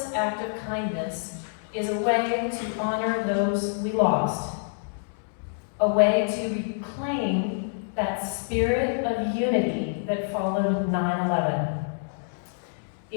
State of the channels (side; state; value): right; silent; 60 dB below the other